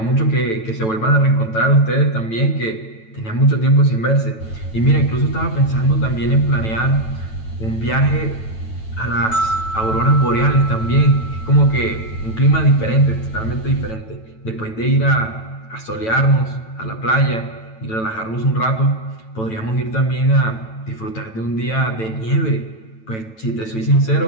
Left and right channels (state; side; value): late; right; 9.1 ms